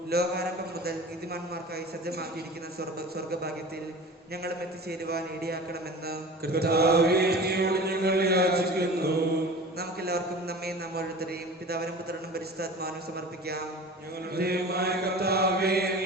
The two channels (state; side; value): normal; both; correlation 0.37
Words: ലോകാരംഭം മുതൽ നീതിമാന്മാർക്കായി സജ്ജമാക്കിയിരിക്കുന്ന സ്വർഗഭാഗ്യത്തിൽ ഞങ്ങളും എത്തിച്ചേരുവാൻ ഇടയാക്കണമെന്ന് കർത്താവേ, അങ്ങയോട് ഞങ്ങൾ യാചിക്കുന്നു. നമുക്കെല്ലാവർക്കും നമ്മെ നാം ഓരോരുത്തരെയും പിതാവിനും പുത്രനും പരിശുദ്ധാത്മാവിനും സമർപ്പിക്കാം. ഞങ്ങളുടെ ദൈവമായ കർത്താവേ,